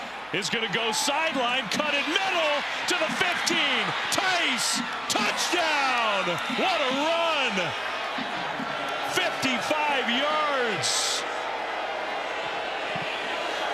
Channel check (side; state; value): right; noise; hum, 27 dB below the sound